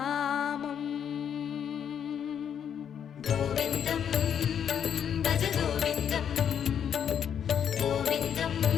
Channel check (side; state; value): right; quieter; 8.5 dB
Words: கோவிந்தம் பஜ கோவிந்தம், கோவிந்தம்